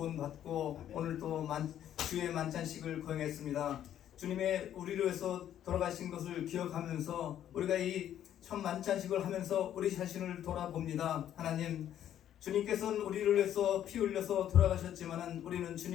오늘 또 주의 만찬식을 거행했습니다. 주님의 우리를 위해서 돌아가신 것을 기억하면서 우리가 이 첫 만찬식을 하면서 우리 자신을 돌아봅니다. 하나님, 주님께서는 우리를 위해서 피 흘려서 돌아가셨지만은 우리는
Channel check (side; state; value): right; quieter; 10.9 dB